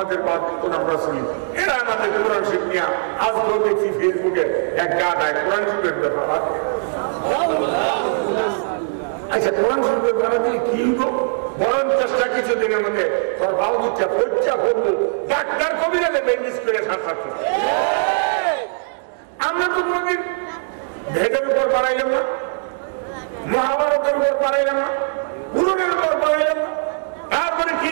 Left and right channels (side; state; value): left; silent; digital silence